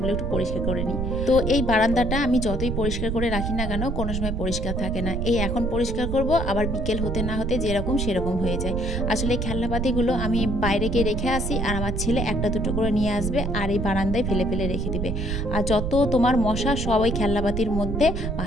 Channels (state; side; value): noise; right; rumble, 2 dB below the sound